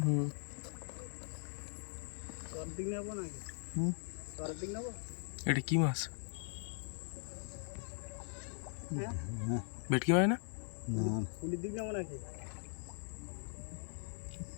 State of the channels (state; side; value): silent; right; 51 dB below the other